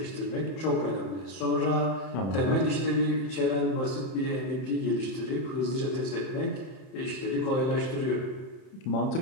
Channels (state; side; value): late; right; 31 ms